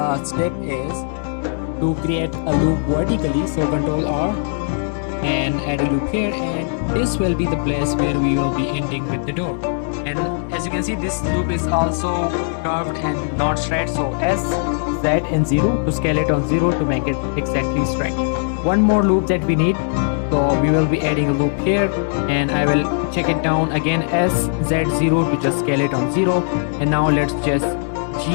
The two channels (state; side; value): silent; right; 66 dB below the other